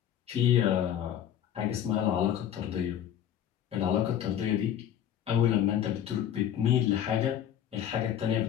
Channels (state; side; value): quieter; right; 10.2 dB